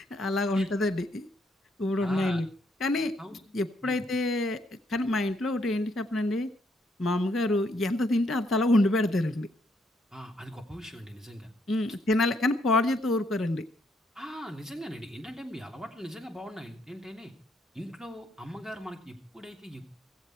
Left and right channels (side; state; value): both; normal; correlation 0.73